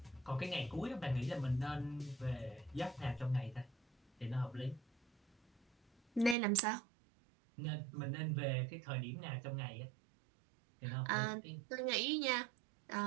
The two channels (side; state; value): left; drops out; at 6.4 s